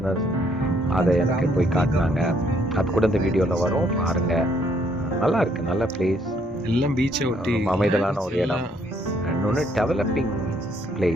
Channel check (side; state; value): both; normal; correlation 0.68